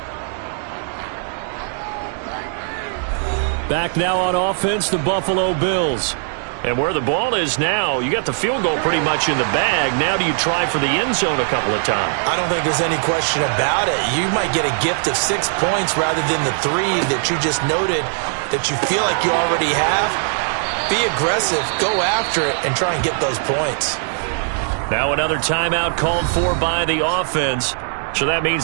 Back now on offense, the Buffalo Bills. And where the ball is now, you got the field goal pretty much in the bag. Now do you try for the end zone a couple of times? I don't think there's any question about it. You might get a gift of 6 points rather than the 3 that you just noted that you feel like you already have. Be aggressive, go after it, and try and get those points. Now another timeout called for by the offense. So that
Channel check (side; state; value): left; silent; digital silence